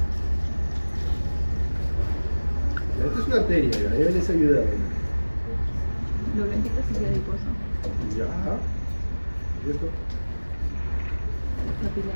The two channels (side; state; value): both; inverted; correlation -1.00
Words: Esta es una arteria, ya les ayuda. Lo blanquito es adiposo. Ya. ¿Y esto?